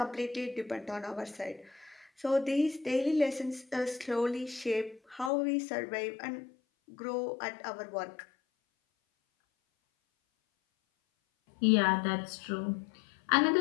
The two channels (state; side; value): drops out; right; at 5.3 s